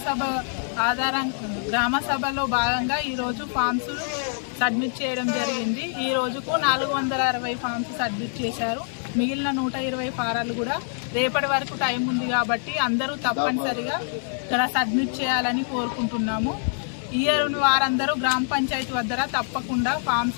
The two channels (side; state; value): right; silent; 62 dB below the other